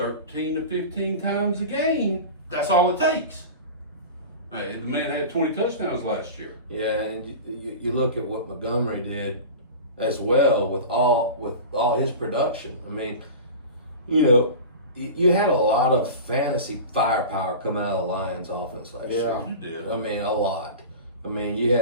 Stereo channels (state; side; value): inverted; both; correlation -0.32